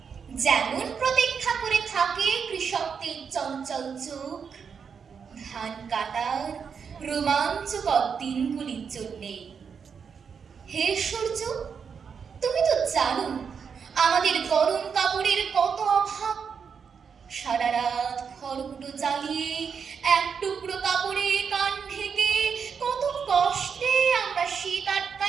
যেমন প্রতীক্ষা করে থাকে কৃষকদের চঞ্চল চোখ ধান কাটার রোমাঞ্চকর দিনগুলির জন্যে। হে সূর্য, তুমি তো জানো আমাদের গরম কাপড়ের কত অভাব। সারা রাত খড়কুটো জ্বালিয়ে এক টুকরো কাপড়ে কান ঢেকে কত কষ্টে আমরা শীত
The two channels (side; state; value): left; quieter; 6.4 dB